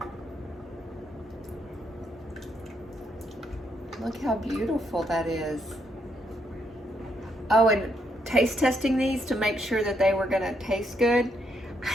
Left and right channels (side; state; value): both; normal; correlation 0.76